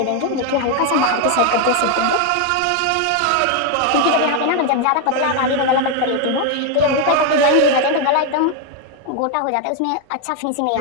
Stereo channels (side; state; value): both; different; correlation 0.01